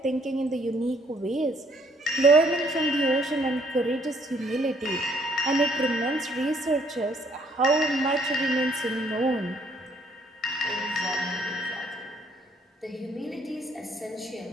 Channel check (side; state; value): both; normal; correlation 0.66